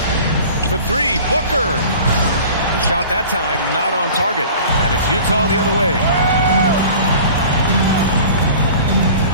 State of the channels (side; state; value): both; inverted; correlation -0.43